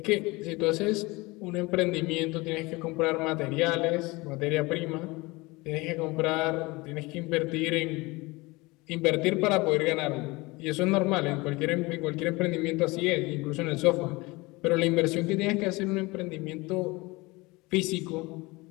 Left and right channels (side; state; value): right; quieter; 23.4 dB